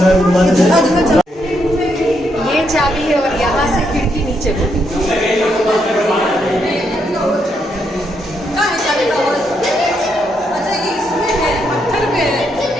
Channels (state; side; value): normal; both; correlation 0.78